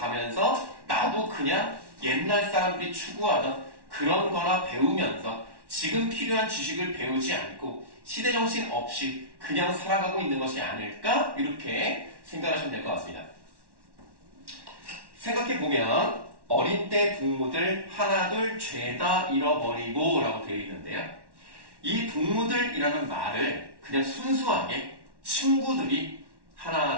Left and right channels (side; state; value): left; late; 1.1 ms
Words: 나도 그냥 옛날 사람들이 추구하던 그런 거나 배우면서 지금 필요한 지식을 배우지 않고 시대정신 없이 그냥 살아가고 있는 것이 아닐까? 이렇게 생각하시면 될 것 같습니다. 생각해보면 어린 때 동무들 하나둘 죄다 잃어버리고 라고 되어 있는데요. 이 동무들이라는 말을 그냥 순수하게 친구들이